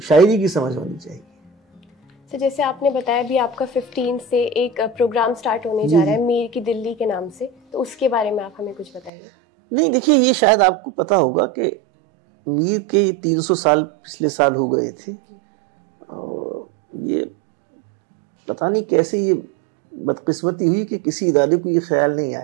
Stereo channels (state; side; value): drops out; left; at 9.1 s